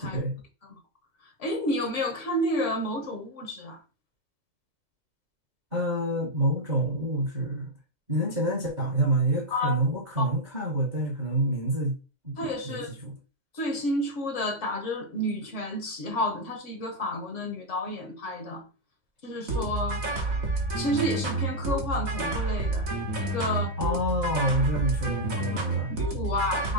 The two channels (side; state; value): left; late; 2.0 ms